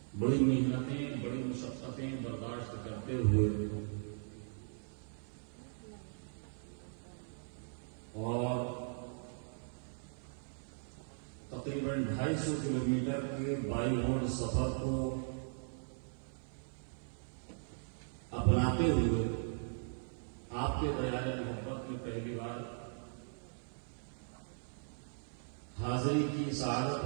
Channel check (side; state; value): left; silent; 52 dB below the other